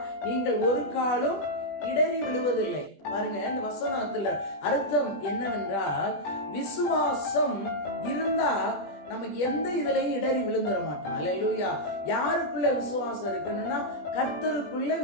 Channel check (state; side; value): late; right; 20 ms